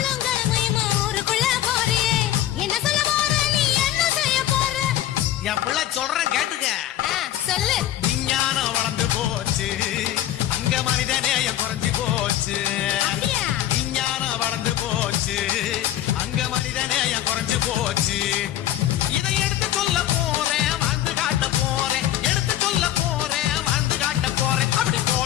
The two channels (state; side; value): quieter; right; 12.5 dB